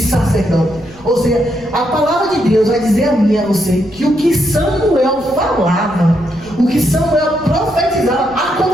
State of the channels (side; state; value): right; noise; rumble, 24 dB below the sound